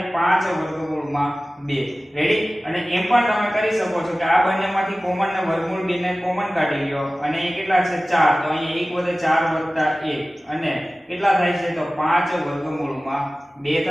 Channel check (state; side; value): normal; both; correlation 0.97